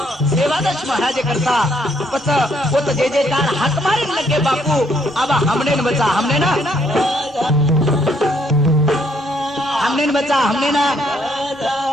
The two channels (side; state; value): both; normal; correlation 0.70